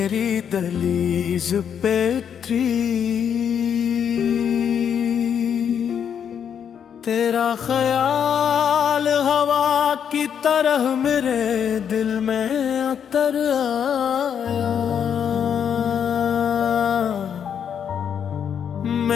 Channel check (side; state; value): right; quieter; 8.1 dB